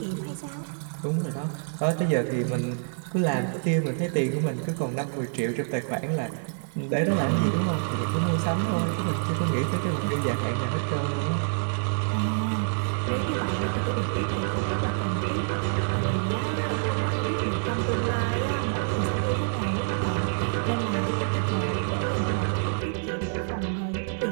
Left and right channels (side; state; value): left; silent; digital silence